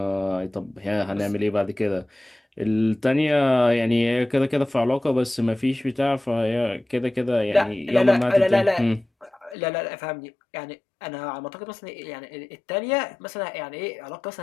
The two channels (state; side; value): drops out; right; at 9.6 s